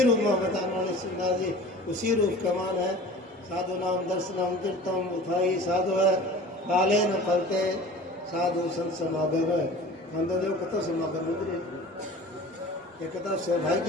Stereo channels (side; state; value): both; normal; correlation 0.41